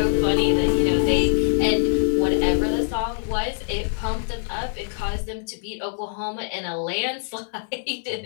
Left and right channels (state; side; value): silent; right; digital silence